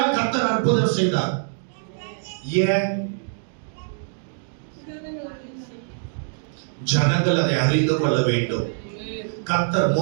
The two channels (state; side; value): silent; left; digital silence